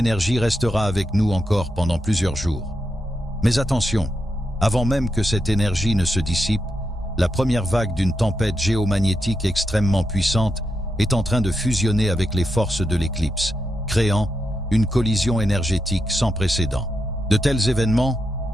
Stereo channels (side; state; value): both; normal; correlation 0.85